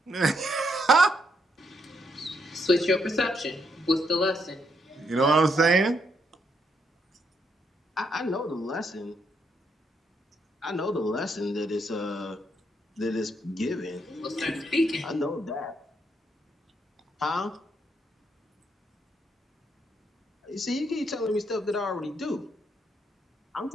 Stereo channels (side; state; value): both; normal; correlation 0.76